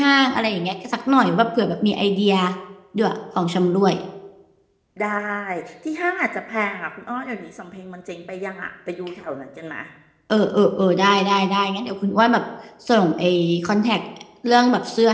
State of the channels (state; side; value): identical; both; correlation 1.00